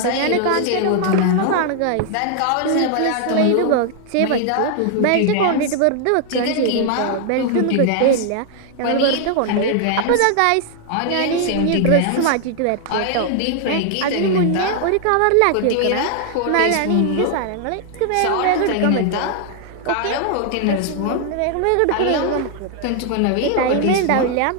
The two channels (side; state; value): both; different; correlation 0.00